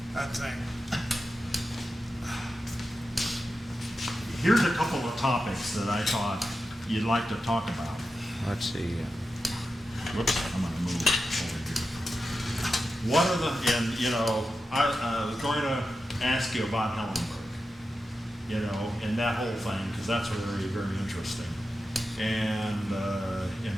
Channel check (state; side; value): normal; both; correlation 0.91